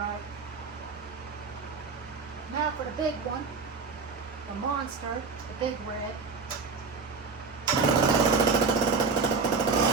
Now for the big one, the monster, the big red.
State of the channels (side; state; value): left; quieter; 4.8 dB